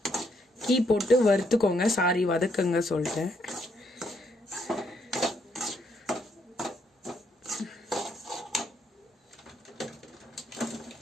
கீ போட்டு வறுத்துக்கோங்க. சாரி, வதக்குங்க சொல்லிட்டேன்.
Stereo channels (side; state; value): both; normal; correlation 0.74